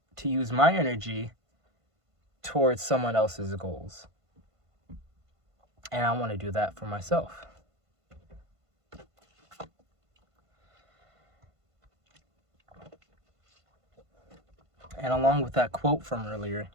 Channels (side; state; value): left; late; 1.5 ms